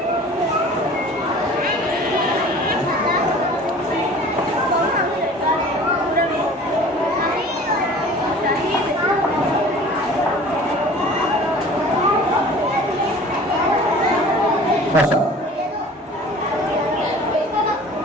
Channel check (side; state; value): both; normal; correlation 0.45